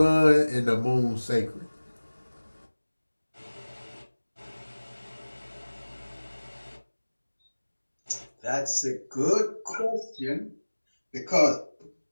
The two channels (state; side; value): inverted; both; correlation -1.00